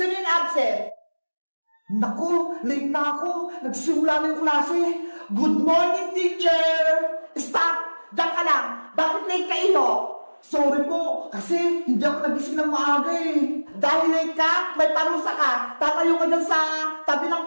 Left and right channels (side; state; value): both; inverted; correlation -1.00